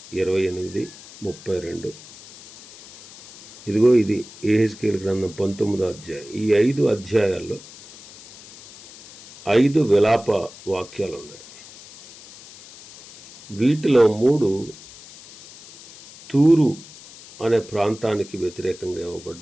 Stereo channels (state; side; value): noise; left; hiss, 19 dB below the sound